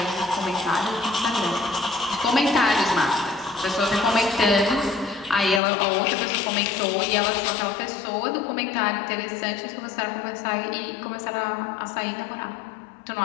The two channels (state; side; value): drops out; right; at 5.6 s